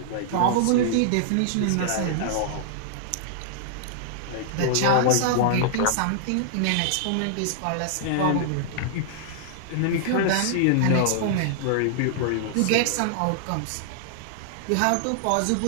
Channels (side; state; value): both; different; correlation -0.01